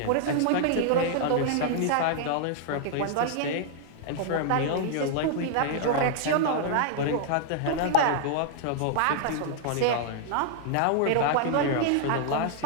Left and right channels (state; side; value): different; both; correlation -0.01